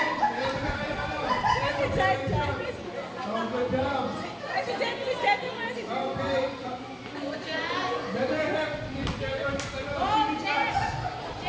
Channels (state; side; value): identical; both; correlation 1.00